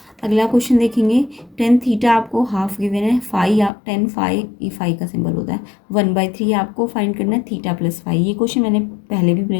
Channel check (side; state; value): right; drops out; at 3.7 s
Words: अगला क्वेश्चन देखेंगे, टेन थीटा आपको हाफ गिवन है, फाई या टेन फाई, ये फाई का सिंबल होता है, 1/3 आपको फाइंड करना है थीटा प्लस फाई। ये क्वेश्चन मैंने पहले भी